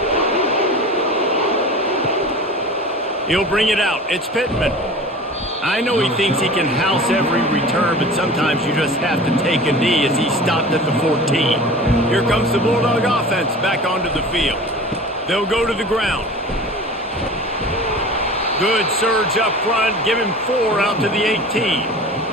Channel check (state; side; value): normal; both; correlation 0.38